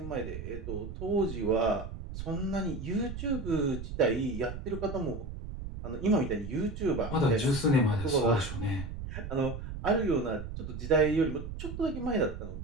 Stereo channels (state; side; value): noise; right; rumble, 8 dB below the sound